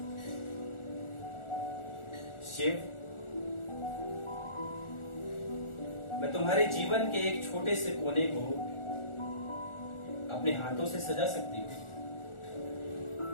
शिव, मैं तुम्हारे जीवन के एक छोटे से कोने को अपने हाथों से सजा सकती हूँ,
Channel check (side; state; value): right; late; 1.4 ms